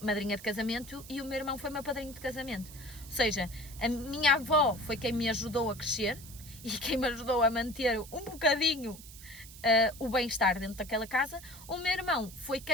madrinha de casamento e o meu irmão foi meu padrinho de casamento. Ou seja, a minha avó foi quem me ajudou a crescer e quem me ajudou a manter um bocadinho o bem-estar dentro daquela casa. O meu irmão foi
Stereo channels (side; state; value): right; noise; hiss, 17 dB below the sound